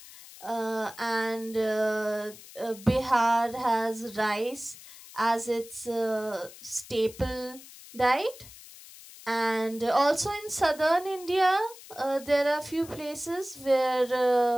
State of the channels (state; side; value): noise; left; hiss, 18 dB below the sound